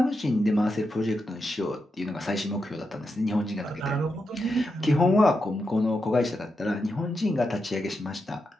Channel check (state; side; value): normal; both; correlation 0.86